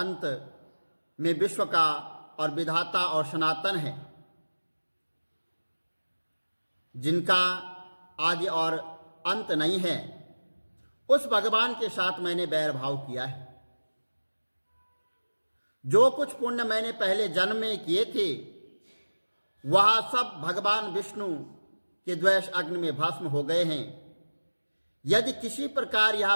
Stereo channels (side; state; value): both; inverted; correlation -1.00